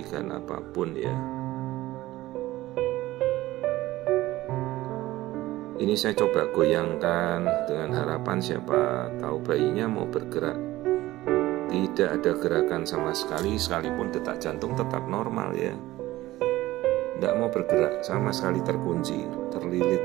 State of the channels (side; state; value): left; quieter; 16.9 dB